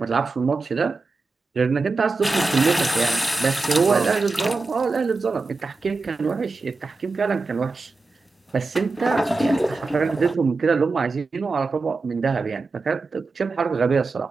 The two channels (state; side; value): quieter; left; 3.8 dB